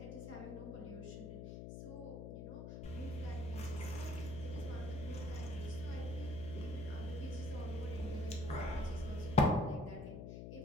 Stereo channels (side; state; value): left; noise; hum, 7 dB below the sound